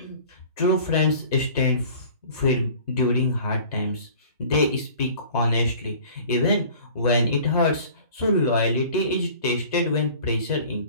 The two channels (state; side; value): inverted; both; correlation -0.46